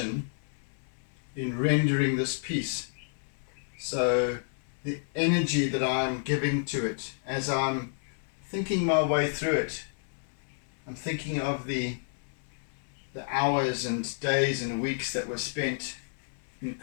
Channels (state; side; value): silent; right; digital silence